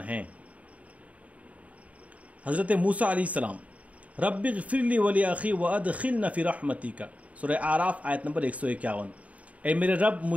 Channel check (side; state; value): left; late; 0.068 ms